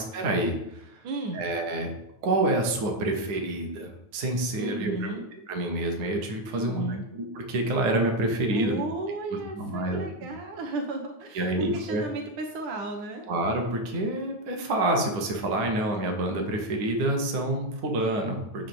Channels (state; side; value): late; left; 9.4 ms